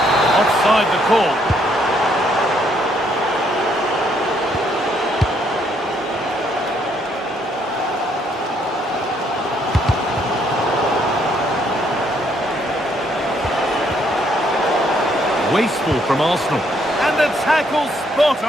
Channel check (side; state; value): both; normal; correlation 0.70